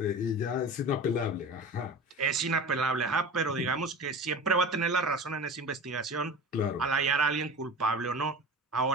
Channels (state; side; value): normal; both; correlation 0.34